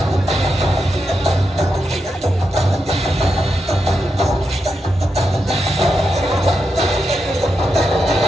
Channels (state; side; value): normal; both; correlation 0.86